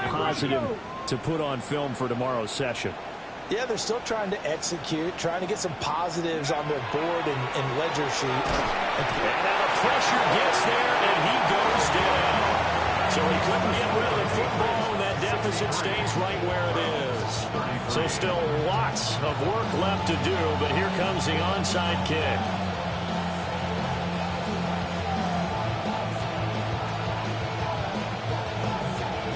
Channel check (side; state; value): both; identical; correlation 1.00